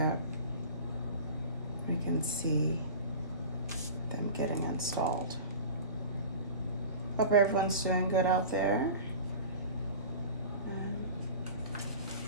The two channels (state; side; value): inverted; both; correlation -0.36